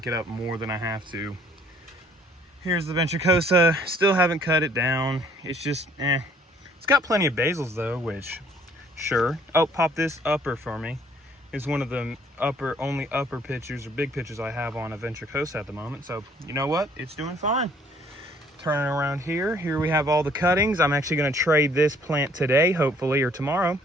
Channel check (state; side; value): normal; both; correlation 0.60